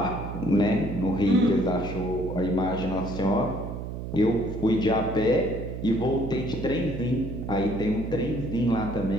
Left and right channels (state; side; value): noise; right; hum, 7 dB below the sound